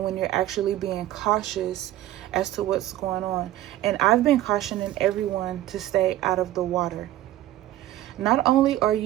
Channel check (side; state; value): left; quieter; 14.2 dB